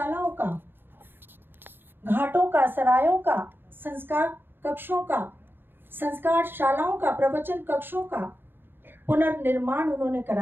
का, घाटों का, सरायों का, संस्कार कक्षों का, संस्कार शालाओं का, प्रवचन कक्षों का पुनर्निर्माण उन्होंने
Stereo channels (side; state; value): left; late; 0.10 ms